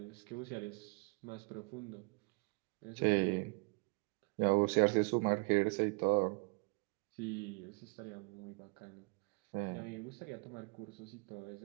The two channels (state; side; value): quieter; left; 31.9 dB